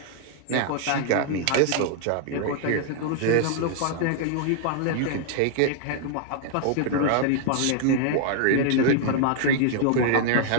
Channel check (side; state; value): both; different; correlation 0.00